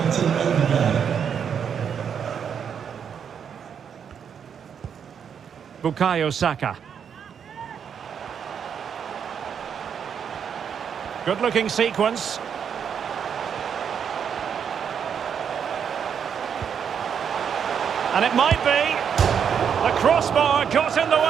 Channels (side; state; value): left; quieter; 7.6 dB